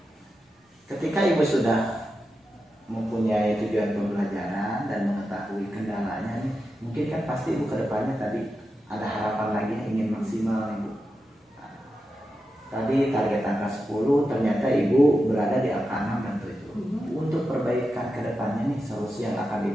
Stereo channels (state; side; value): normal; both; correlation 0.89